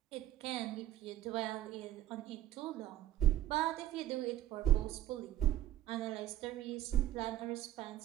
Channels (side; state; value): left; quieter; 13.6 dB